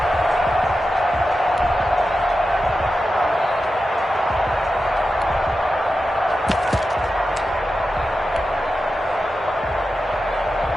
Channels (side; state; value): both; normal; correlation 0.91